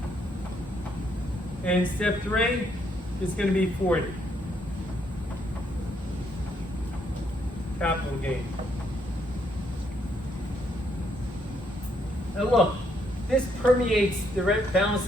And step 3 is going to be 40. Capital gain. Now look, this permeates the balance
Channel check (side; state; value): both; normal; correlation 0.73